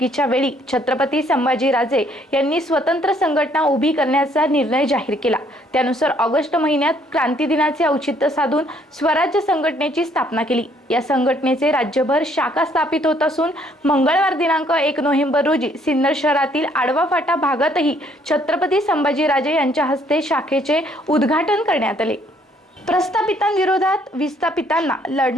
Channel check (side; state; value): both; normal; correlation 0.65